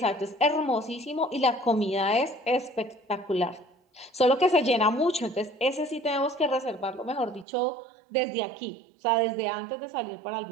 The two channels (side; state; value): left; drops out; at 7.5 s